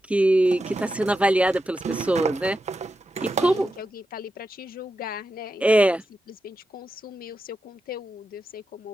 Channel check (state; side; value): normal; both; correlation 0.88